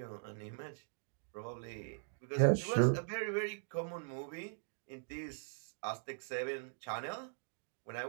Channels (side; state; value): left; silent; digital silence